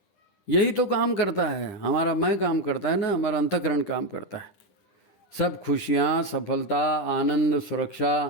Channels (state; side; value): late; right; 10 ms